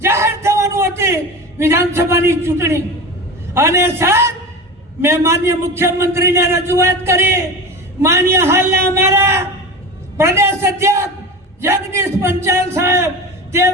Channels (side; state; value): both; normal; correlation 0.28